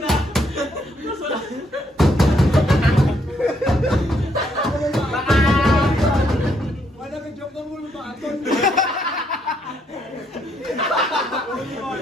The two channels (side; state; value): both; normal; correlation 0.73